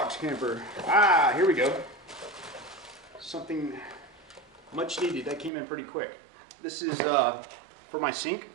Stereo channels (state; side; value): drops out; left; at 5.5 s